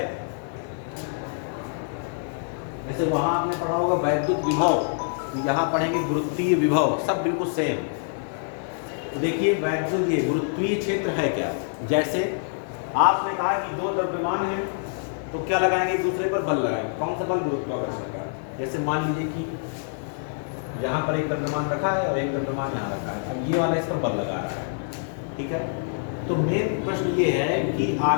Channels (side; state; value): right; silent; 58 dB below the other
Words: जैसे वहां आपने पढ़ा होगा वैद्युत विभव, तो यहाँ पढ़ेंगे गुरुत्वीय विभव, सब बिल्कुल सेम। तो देखिए वैद्युत, ये गुरुत्वीय क्षेत्र है क्या? जैसे आपने कहा कि दो द्रव्यमान हैं तो क्या लगाएंगे? एक दूसरे पर बल लगाएंगे। कौन सा बल? गुरुत्वाकर्षण का। जैसे मान लीजिए कि यहाँ पर एक द्रव्यमान रखा है और एक द्रव्यमान यहाँ रखा है, अब ये वाला इस पर बल लगा रहा है। ठीक है, तो मेन प्रश्न ये है कि